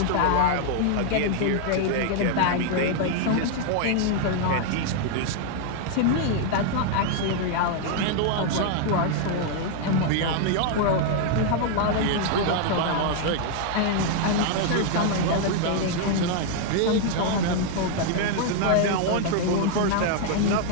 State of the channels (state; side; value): different; both; correlation 0.00